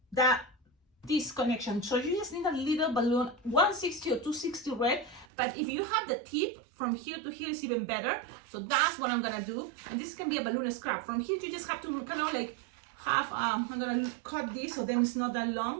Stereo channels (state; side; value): drops out; left; at 5.2 s